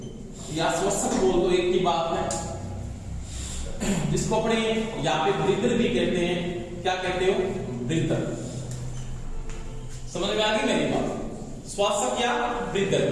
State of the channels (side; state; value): both; identical; correlation 1.00